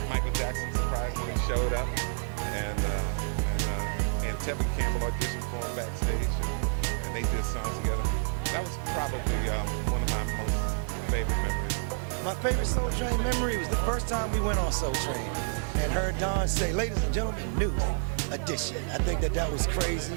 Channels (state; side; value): silent; left; digital silence